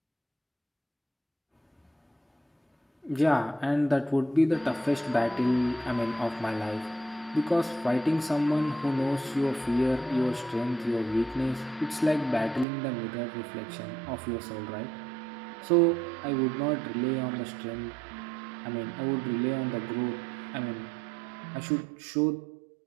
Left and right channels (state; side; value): drops out; left; at 12.7 s